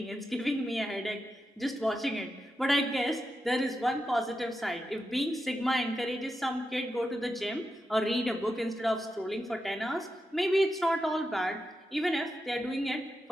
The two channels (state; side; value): normal; both; correlation 0.88